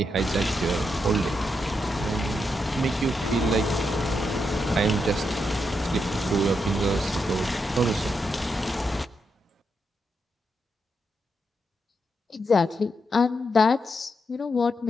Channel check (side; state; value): both; normal; correlation 0.83